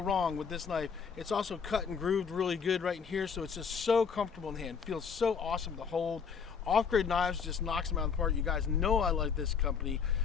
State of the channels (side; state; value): right; quieter; 6.3 dB